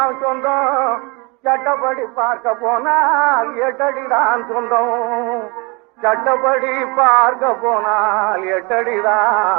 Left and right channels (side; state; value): left; quieter; 29.1 dB